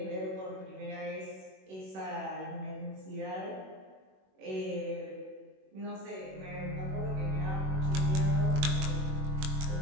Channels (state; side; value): late; left; 21 ms